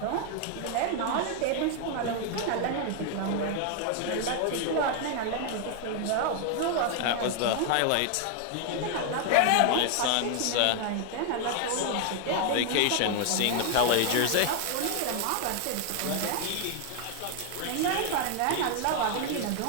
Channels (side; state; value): both; different; correlation 0.00